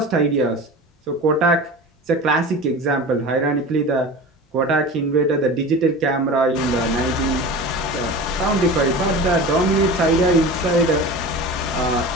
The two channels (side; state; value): both; normal; correlation 0.33